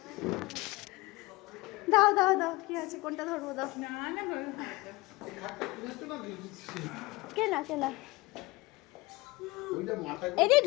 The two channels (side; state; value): right; quieter; 22.1 dB